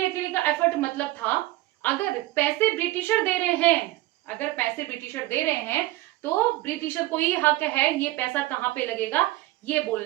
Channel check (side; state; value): left; quieter; 17.9 dB